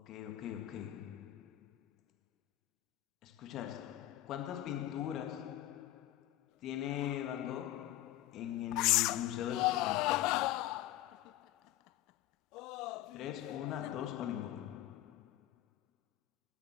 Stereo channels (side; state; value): right; quieter; 14.4 dB